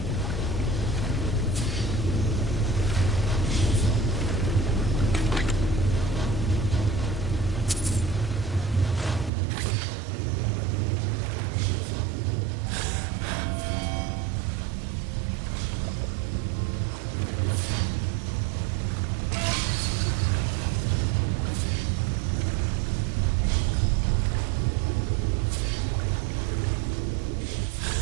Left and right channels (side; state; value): left; drops out; at 9.3 s